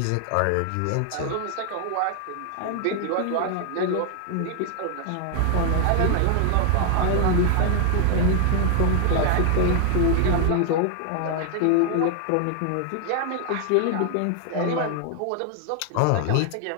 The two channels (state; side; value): different; both; correlation 0.00